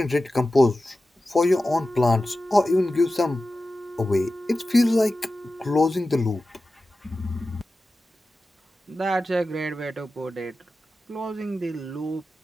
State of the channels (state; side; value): normal; both; correlation 0.94